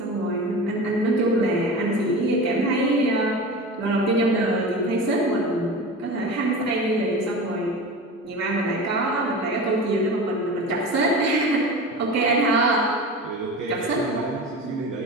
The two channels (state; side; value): normal; both; correlation 0.31